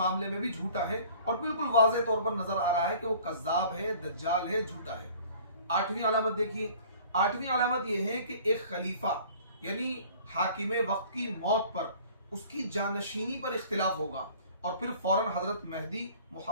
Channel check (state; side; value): inverted; both; correlation -0.50